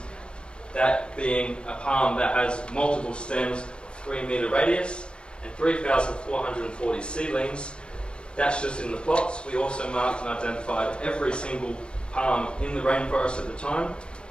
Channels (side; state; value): right; late; 0.055 ms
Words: that being a palm that has multiple stems, 3-metre radius, and 3,440 seedlings. That's just in the plots. We also marked and identified every single palm in the rainforest at the time.